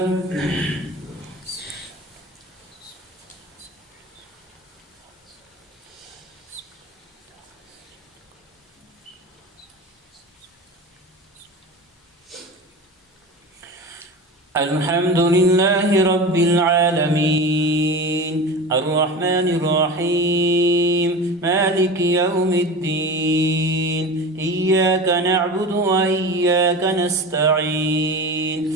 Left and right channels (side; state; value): both; normal; correlation 0.31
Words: الحمد لله رب العالمين الرحمن الرحيم مالك يوم الدين إياك نعبد وإياك نستعين